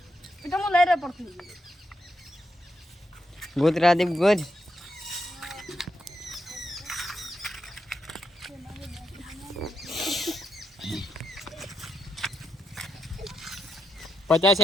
એ તો હું લઈ રહ્યો પડતું ગુજ રાદીપ ગુજ 50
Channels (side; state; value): both; normal; correlation 0.82